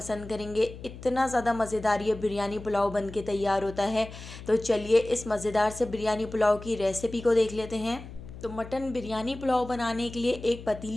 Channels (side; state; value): left; noise; hum, 14 dB below the sound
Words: करेंगे। इतना ज़्यादा मज़ेदार ये बिरयानी पुलाव बन के तैयार होता है। तो चलिए इस मज़ेदार से बिरयानी पुलाव की रेसिपी को देख लेते हैं। तो मटन बिरयानी पुलाव बनाने के लिए एक